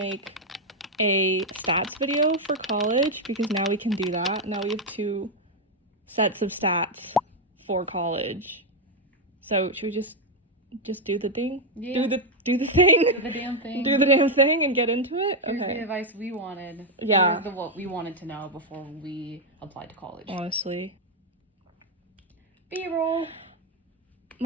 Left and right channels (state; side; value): normal; both; correlation 0.02